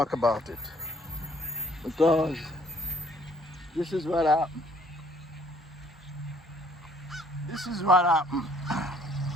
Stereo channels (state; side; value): normal; both; correlation 0.61